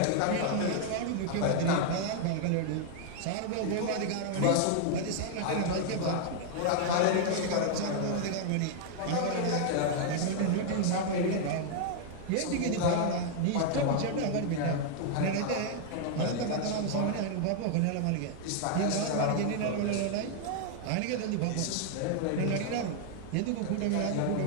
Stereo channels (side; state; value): both; different; correlation 0.00